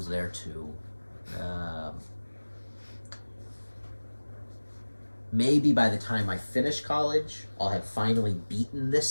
there too. Maybe by the time I finish college, I'll have finally beaten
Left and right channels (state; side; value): inverted; both; correlation -1.00